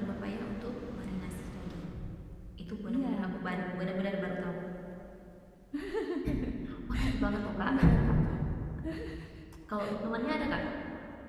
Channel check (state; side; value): identical; both; correlation 1.00